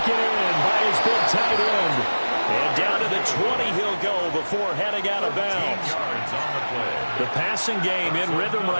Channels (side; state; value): both; inverted; correlation -1.00